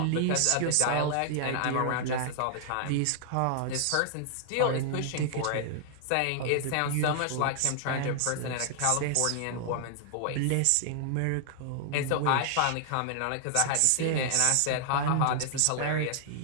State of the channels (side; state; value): both; different; correlation -0.01